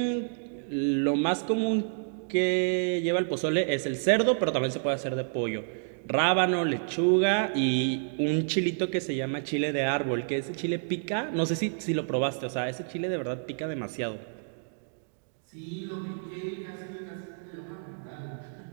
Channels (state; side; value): silent; left; digital silence